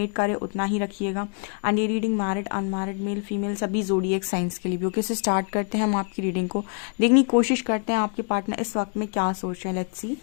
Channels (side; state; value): right; quieter; 39.9 dB